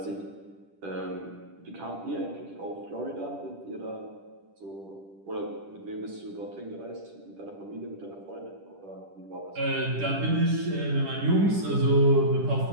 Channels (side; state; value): left; late; 10 ms